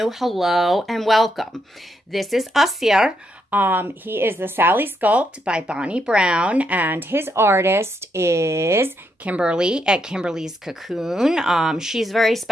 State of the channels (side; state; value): both; normal; correlation 0.79